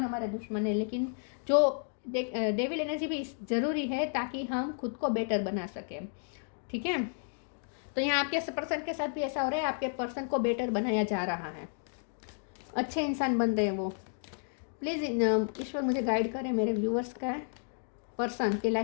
हमारे दुश्मन है, लेकिन जो डेविल एनर्जी भी ज़रूरी है ताकि हम खुद को बेटर बना सकें, ठीक है। तो यहाँ आपके पर्सन के साथ भी ऐसा हो रहा है, आपके पर्सन को बेटर बनाया जा रहा है, अच्छे इंसान बन रहे हैं वो। प्लीज़ ईश्वर मुझे गाइड करें, मेरे व्यूअर्स का पर्सन की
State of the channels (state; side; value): silent; right; digital silence